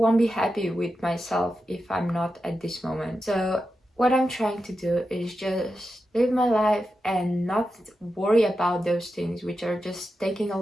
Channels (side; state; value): both; normal; correlation 0.89